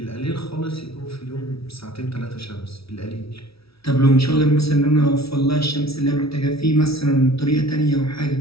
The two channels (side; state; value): right; late; 0.76 ms